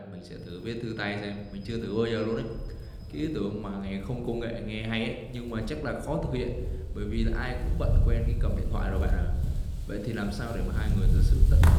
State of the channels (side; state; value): both; identical; correlation 1.00